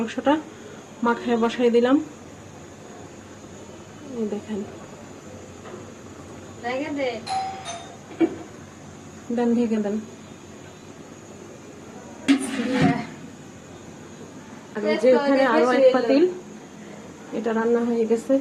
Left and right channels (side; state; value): both; identical; correlation 1.00